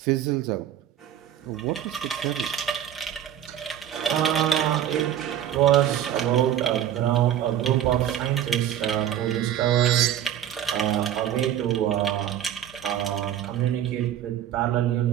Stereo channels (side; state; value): left; quieter; 10.6 dB